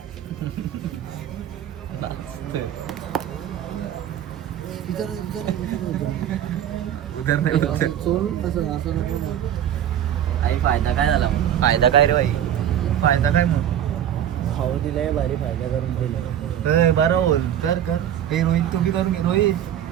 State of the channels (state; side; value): quieter; left; 10.5 dB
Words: फायदा काय झाला? फायदा काय रे भाई? फायदा काय मग? भाऊ दिलाय भारी फायदा करून दिला. बरं बोल. कर कर. हे रोहित तुम्ही करून घे. रोहित